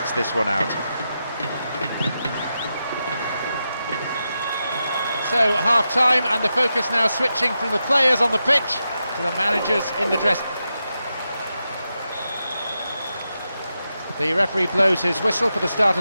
this one out. So half-time, and the focus now switching from the players on the pitch to the managers in the dress. The referee blows his whistle for the start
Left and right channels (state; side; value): inverted; both; correlation -0.88